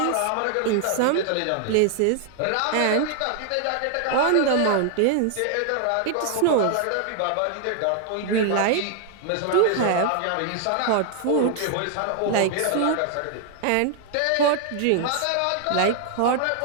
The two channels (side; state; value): both; different; correlation 0.00